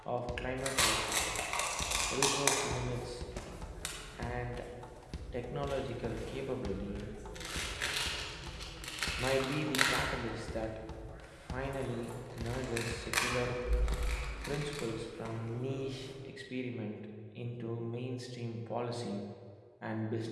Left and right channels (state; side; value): identical; both; correlation 1.00